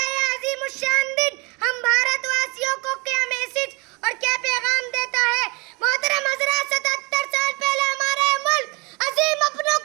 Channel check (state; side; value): quieter; left; 28.2 dB